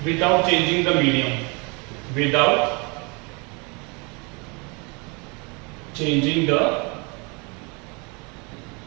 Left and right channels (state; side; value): quieter; left; 30.5 dB